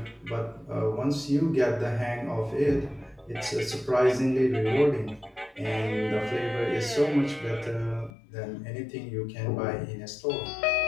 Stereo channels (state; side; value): drops out; right; at 8.1 s